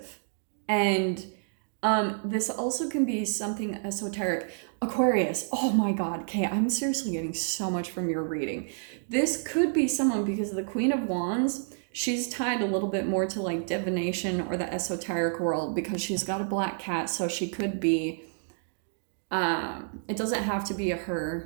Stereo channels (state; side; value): silent; left; digital silence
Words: And this also can be something esoteric. Aquarius, oh my God, okay, I'm seriously getting so much from your reading. This could be someone, because the Queen of Wands, she's tied a little bit more to like divination or the esoteric world, because she's got a black cat. So she could be, it doesn't have to be a